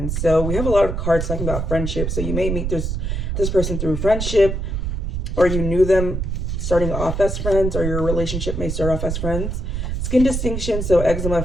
So we have a lot of cards talking about friendship. So you may meet this person through friendship, or you knew them starting off as friends, or your relationship may start off as friends. Skin distinction, so eczema,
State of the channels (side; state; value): right; noise; rumble, 2 dB below the sound